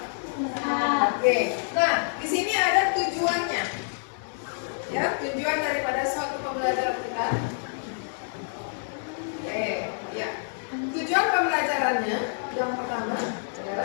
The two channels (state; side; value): silent; right; digital silence